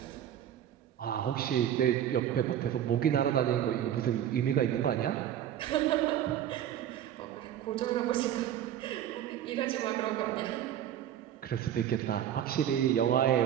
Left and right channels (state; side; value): quieter; left; 10.7 dB